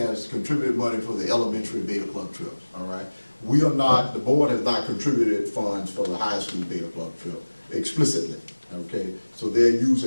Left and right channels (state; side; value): inverted; both; correlation -1.00